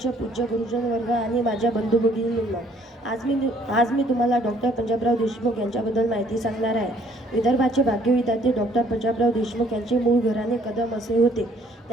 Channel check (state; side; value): normal; both; correlation 0.62